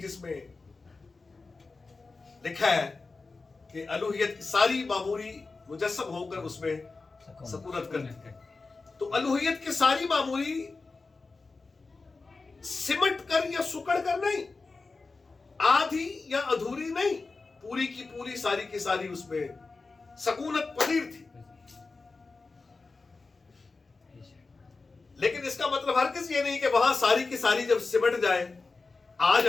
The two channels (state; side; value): quieter; right; 3.9 dB